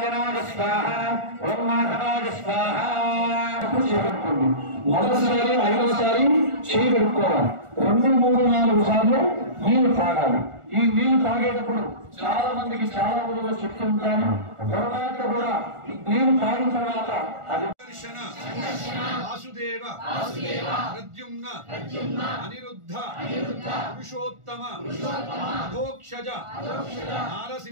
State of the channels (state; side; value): late; left; 1.4 ms